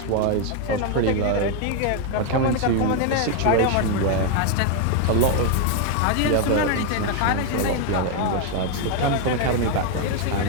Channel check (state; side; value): different; both; correlation 0.01